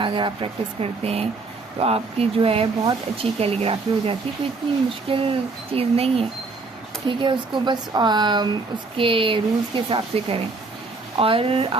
आप प्रैक्टिस करते हैं तो आपकी जो है बहुत अच्छी कैलीग्राफी हो जाती है। कोई इतनी मुश्किल चीज़ नहीं है, ठीक है। उसको बस उसके रूल्स के हिसाब से करें। और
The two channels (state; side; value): quieter; left; 3.8 dB